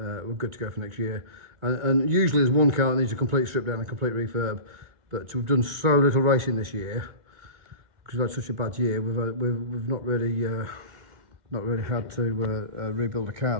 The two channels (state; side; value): late; left; 2.2 ms